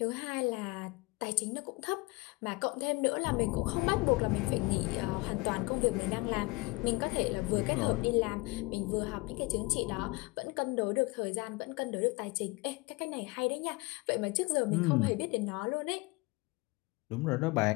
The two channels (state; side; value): quieter; right; 24.9 dB